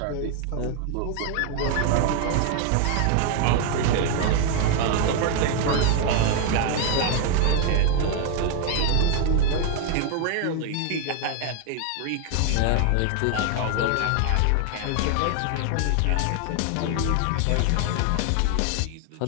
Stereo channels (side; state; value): both; different; correlation 0.01